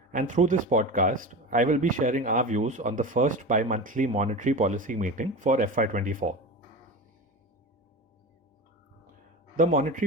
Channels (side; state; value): both; normal; correlation 0.27